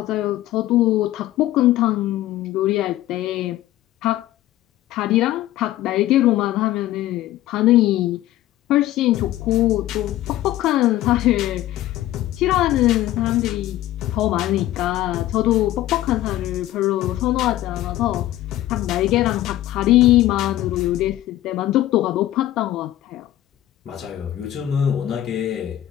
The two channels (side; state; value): right; quieter; 14.4 dB